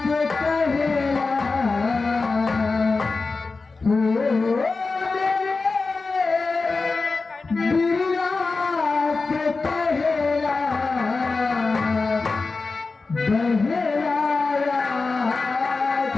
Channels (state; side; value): quieter; right; 4.0 dB